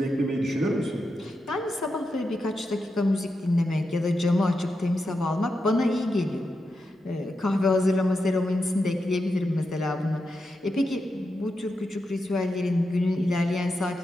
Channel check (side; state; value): both; normal; correlation 0.87